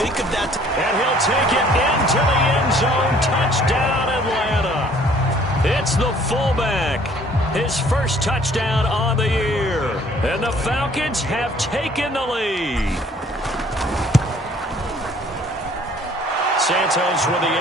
of that. And he'll take it into the end zone. Touchdown, Atlanta. It's the fullback. His first touchdown on the year. And the Falcons have taken the lead. Santos with the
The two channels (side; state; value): both; normal; correlation 0.57